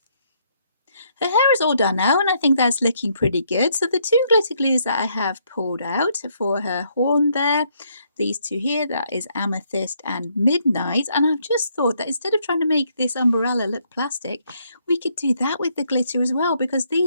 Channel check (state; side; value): inverted; both; correlation -0.72